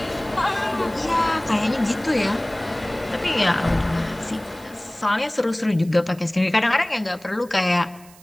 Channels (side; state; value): right; noise; hiss, 24 dB below the sound